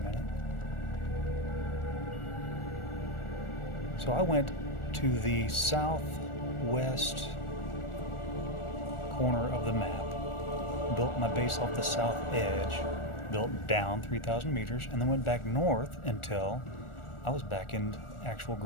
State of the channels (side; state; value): right; late; 1.4 ms